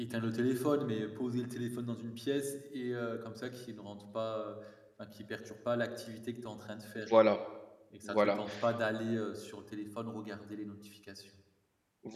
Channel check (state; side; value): identical; both; correlation 1.00